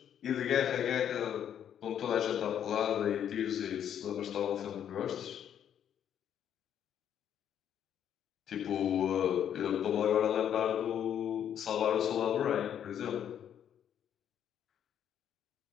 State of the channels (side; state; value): right; quieter; 9.4 dB